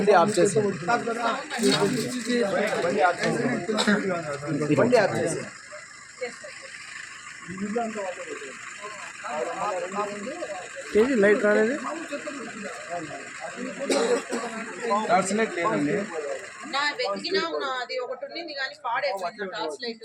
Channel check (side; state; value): both; identical; correlation 1.00